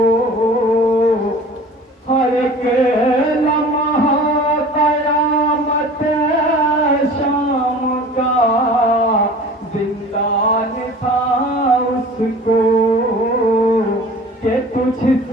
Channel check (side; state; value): both; normal; correlation 0.43